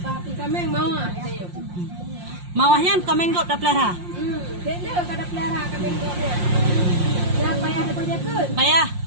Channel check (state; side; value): late; left; 5.6 ms